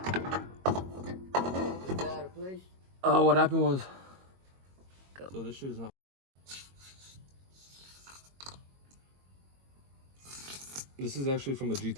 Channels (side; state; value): left; late; 22 ms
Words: What happened was... So this shit is not... This is actually from the